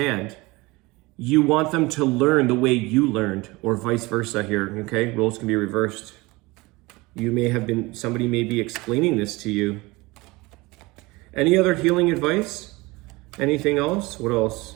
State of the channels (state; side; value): quieter; left; 22.8 dB